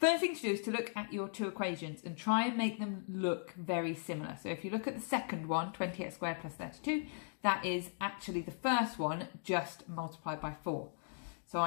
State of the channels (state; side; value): silent; right; digital silence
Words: thing to do is to look at your two equations and try and make them look very similar. So if you look at the second one, 20x squared plus 32, that is actually the first one just multiplied by 4. So